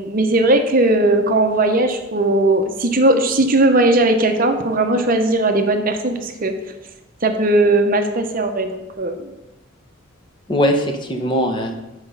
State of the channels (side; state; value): both; normal; correlation 0.26